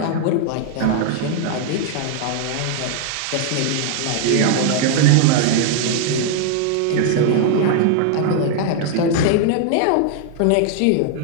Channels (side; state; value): both; different; correlation 0.00